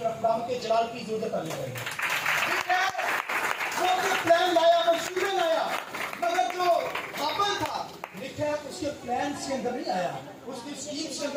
کے جلال کی ضرورت آنے لگی. لکھا ہے وہ اپنے پلان لایا، منصوبے لایا، مگر جو ہابل تھا لکھا ہے اس کے پلانز کے اندر نہیں آیا، اس کی سکیمز کے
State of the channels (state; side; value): identical; both; correlation 1.00